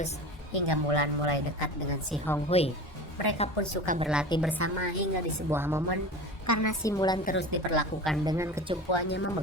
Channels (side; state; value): both; normal; correlation 0.33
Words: hingga Mulan mulai dekat dengan si Hong Hui. Mereka pun suka berlatih bersama hingga di sebuah momen karena si Mulan terus diperlakukan dengan kecumpuannya